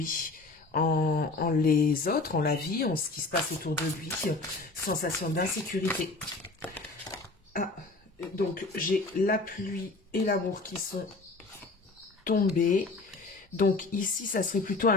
en les autres, en la vie, en ce qui se passe autour de lui, sensation d'insécurité. Ah, donc j'ai la pluie et l'amour qui sont tombés, donc ici, ça serait plutôt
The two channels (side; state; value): right; quieter; 3.5 dB